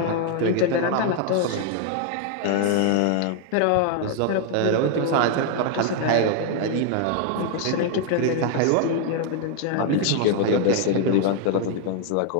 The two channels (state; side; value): different; both; correlation 0.00